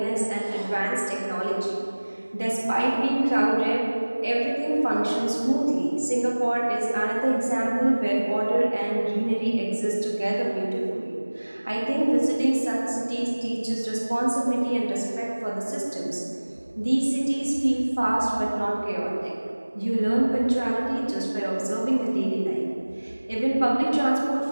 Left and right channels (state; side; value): inverted; both; correlation -1.00